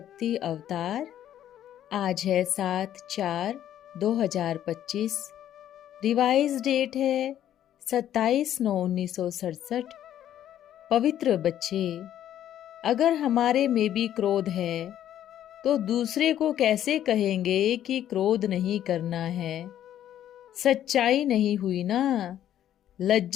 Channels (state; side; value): quieter; right; 11.2 dB